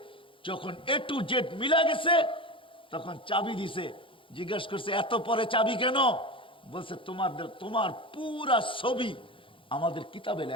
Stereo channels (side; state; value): right; late; 0.25 ms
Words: যখন A to Z মিলা গেছে, তখন চাবি দিছে। জিজ্ঞেস করছে এত পরে চাবি কেন? বলছে তোমার পুরা ছবি আমাদের কিতাবে